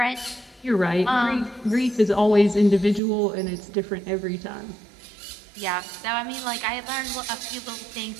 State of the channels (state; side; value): drops out; left; at 3.0 s